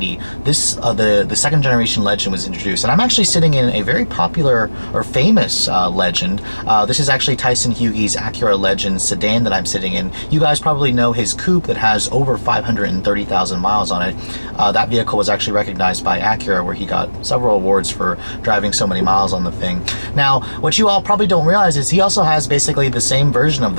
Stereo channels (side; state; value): both; inverted; correlation -1.00